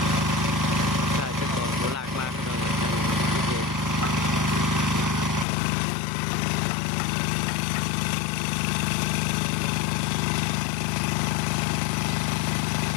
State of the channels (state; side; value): drops out; right; at 5.5 s